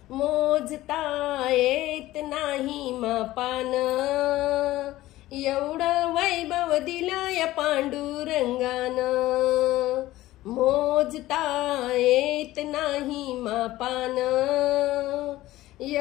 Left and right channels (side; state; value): right; quieter; 16.4 dB